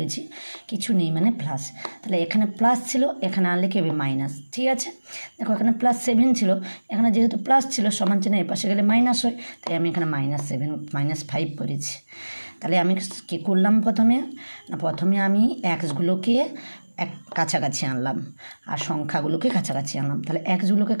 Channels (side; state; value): both; inverted; correlation -1.00